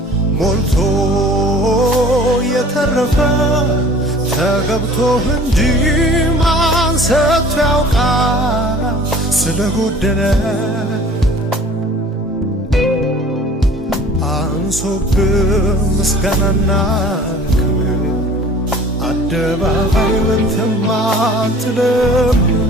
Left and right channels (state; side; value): normal; both; correlation 0.47